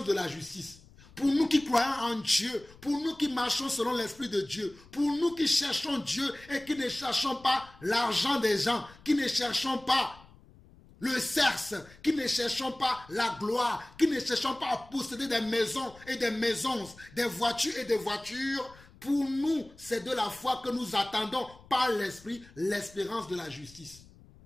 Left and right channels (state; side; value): noise; left; rumble, 24 dB below the sound